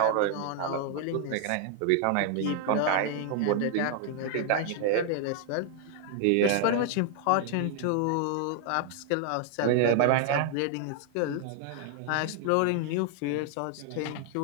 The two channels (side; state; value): both; different; correlation 0.00